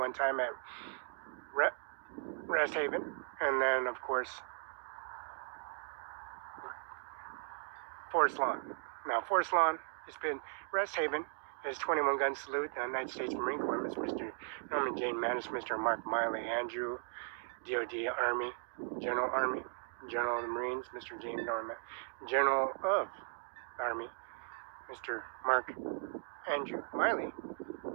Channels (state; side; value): silent; left; digital silence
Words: time at Rest Haven, and then of course Forest Lawn. Now Forest Lawn has been Rest Haven is 21 gun salute, the United States Marine Corps, Mr. Norman Jane Manis, Mr. Mark Miley, Andrew, DOD Army, General of the Marines, Mr. James Norman, General of the Army, Mr. Mark Andrew Miley,